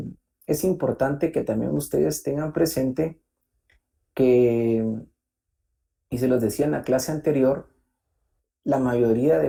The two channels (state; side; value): identical; both; correlation 1.00